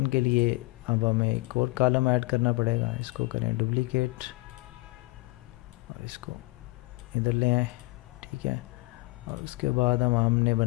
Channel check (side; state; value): right; quieter; 23.1 dB